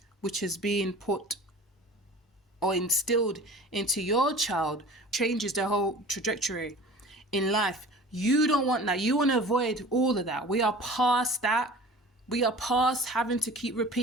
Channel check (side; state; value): both; normal; correlation 0.41